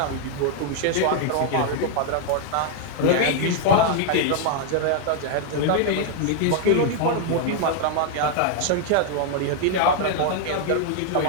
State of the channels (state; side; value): different; both; correlation 0.00